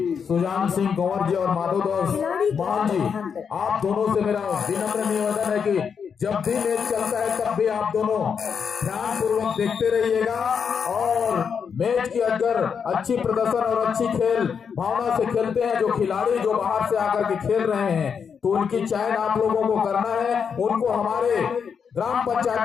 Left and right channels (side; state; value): right; quieter; 6.7 dB